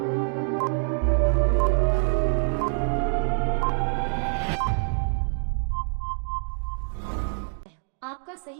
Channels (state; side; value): silent; left; digital silence